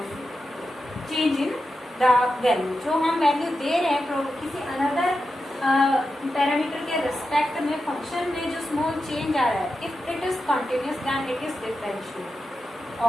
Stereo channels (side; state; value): both; normal; correlation 0.90